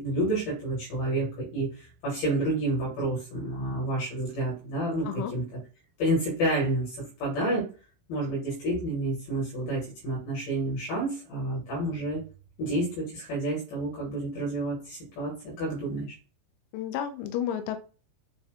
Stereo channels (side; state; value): right; late; 18 ms